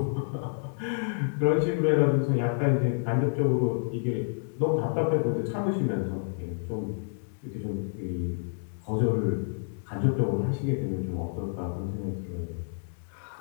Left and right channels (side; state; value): right; silent; digital silence